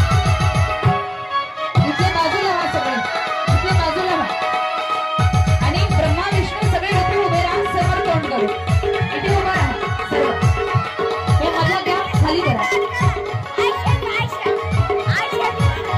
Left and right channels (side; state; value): both; identical; correlation 1.00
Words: इथल्या बाजूला व्हा सगळे इथल्या बाजूला व्हा. आणि ब्रह्मा विष्णू सगळे इथे उभे राहा. समोर तोंड करू इथे उभा राहा सर्व. हे मला द्या खाली करा.